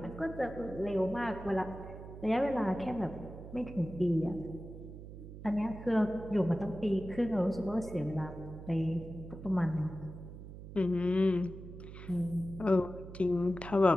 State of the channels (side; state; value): right; noise; hum, 13 dB below the sound